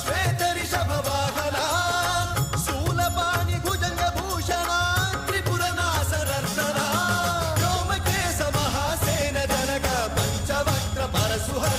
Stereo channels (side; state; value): both; identical; correlation 1.00